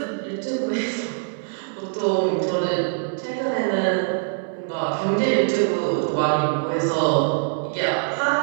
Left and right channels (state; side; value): silent; left; 63 dB below the other